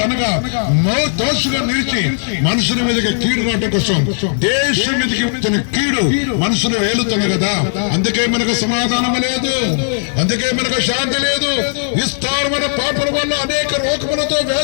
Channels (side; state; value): right; silent; digital silence